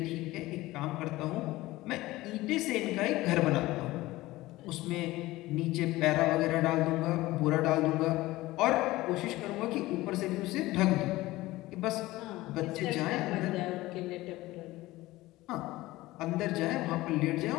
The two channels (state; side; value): quieter; right; 18.3 dB